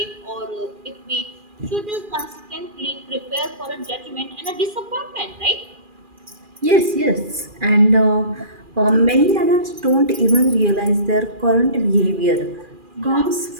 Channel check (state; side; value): late; left; 2.4 ms